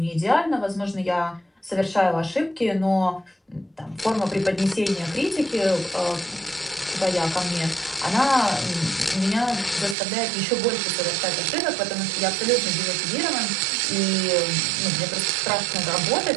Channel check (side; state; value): left; drops out; at 10.0 s